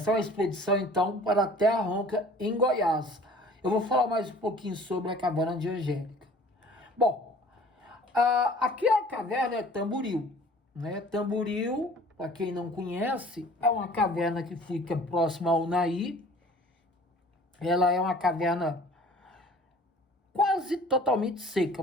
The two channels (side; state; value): both; normal; correlation 0.49